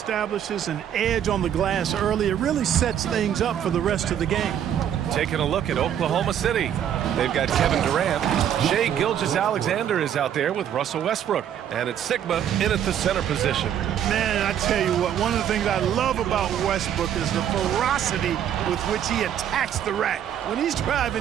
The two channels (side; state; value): left; quieter; 9.8 dB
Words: an edge on the glass early, it really sets things up for the rest of the game. Taking a look at Oklahoma City. They've got Kevin Durant. Shea Gilgeous-Alexander is out there with Russell Westbrook. And it's Sigma in at the center position. Man, I tell you what, one of the things I love about Westbrook is the ferocity with which he attacks the rack. When he's